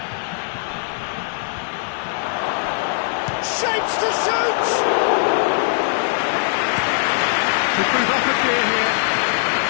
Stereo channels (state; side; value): silent; right; digital silence